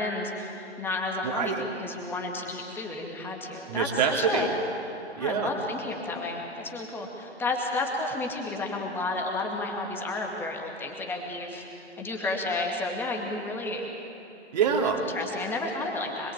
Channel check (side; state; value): both; normal; correlation 0.24